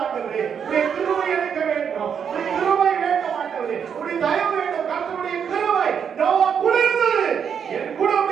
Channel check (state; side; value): quieter; left; 7.5 dB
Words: ஆண்டவரே. உடைய கிருபை எனக்கு வேண்டும். உடைய கிருபை வேண்டும் ஆண்டவரே. உடைய தயவு வேண்டும். கர்த்தருடைய கிருபை நோவா குளிர்ந்தது. என் கூட